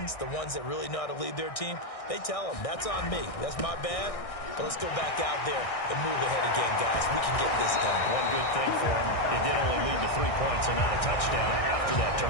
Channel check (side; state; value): right; late; 1.6 ms